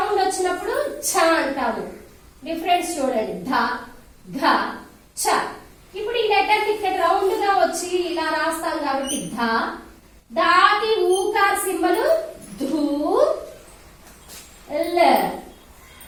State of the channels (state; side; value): identical; both; correlation 1.00